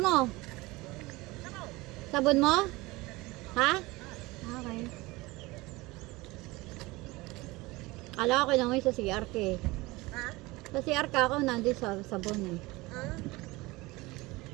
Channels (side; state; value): left; quieter; 21.8 dB